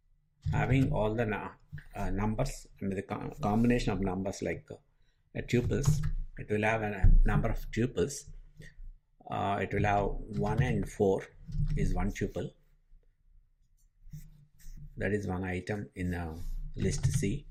having all the numbers, the combination of numbers like tuples. It will have a number of tuples. It will have 1 and 4 is one tuple. That is one item in list C,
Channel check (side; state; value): both; identical; correlation 1.00